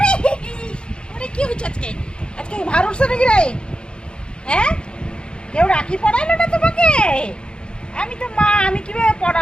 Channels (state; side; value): late; right; 0.052 ms